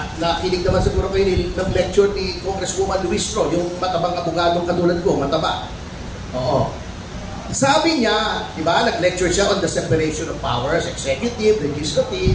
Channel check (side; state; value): both; identical; correlation 1.00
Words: nakinig naman siguro kayo ng lecture ni Congresswoman Luis Tro, yung matabang abogadong katulad ko, mataba. Oo. Sabi niya, di ba, nag-lecture siya on the separation of powers, executive,